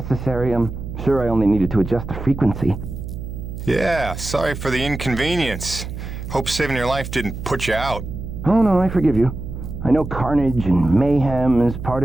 I'm sure I only needed to adjust the frequency. Yeah, sorry for the inconvenience. Hope saving your life didn't put you out. Oh no, I forgive you. I know carnage and mayhem is part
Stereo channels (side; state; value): right; noise; hum, 8 dB below the sound